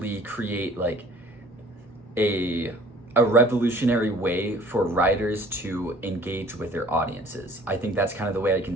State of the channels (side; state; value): both; normal; correlation 0.51